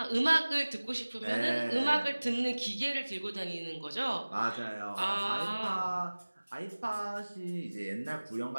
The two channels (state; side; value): inverted; both; correlation -1.00